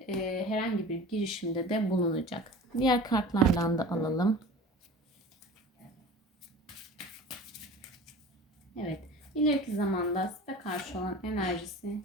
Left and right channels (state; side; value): normal; both; correlation 0.38